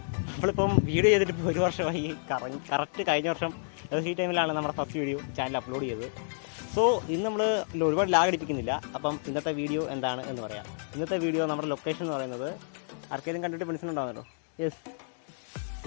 നമ്മളിപ്പം video ചെയ്തിട്ട് ഇപ്പോൾ 1 വർഷമായി. കറക്റ്റ് കഴിഞ്ഞ വർഷം ഈ ടൈമിലാണ് നമ്മുടെ ഫസ്റ്റ് വീഡിയോ ചാനൽ അപ്ലോഡ് ചെയ്തത്. സോ ഇന്ന് നമ്മൾ ഒരുപാട് ലാഗ് അടിപ്പിക്കുന്നില്ല. അപ്പം ഇന്നത്തെ വീഡിയോ എന്താണ് എന്ന് പറയാം. ഇന്നത്തെ വീഡിയോ നമ്മുടെ ലൊക്കേഷൻ എന്ന് പറയുന്നത് ആർക്കെങ്കിലും കണ്ടിട്ട് മനസ്സിലുണ്ടാകുന്നല്ലോ. യെസ്,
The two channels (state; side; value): silent; right; digital silence